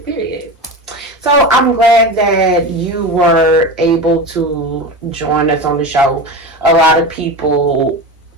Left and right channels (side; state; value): both; normal; correlation 0.25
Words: Period. So I'm glad that you were able to join us on the show. A lot of people,